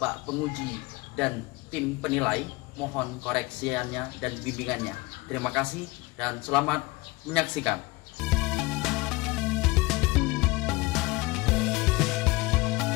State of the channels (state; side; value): quieter; right; 22.7 dB